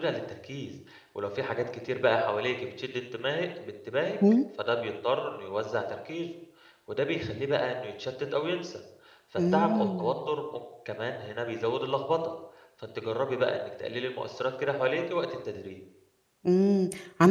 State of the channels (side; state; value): both; identical; correlation 1.00